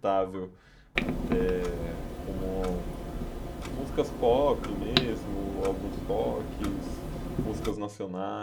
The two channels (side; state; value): both; identical; correlation 1.00